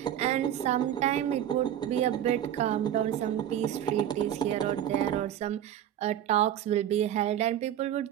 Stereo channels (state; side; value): quieter; left; 10.9 dB